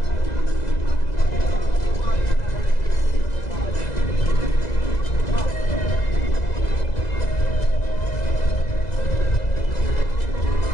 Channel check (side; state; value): right; late; 2.0 ms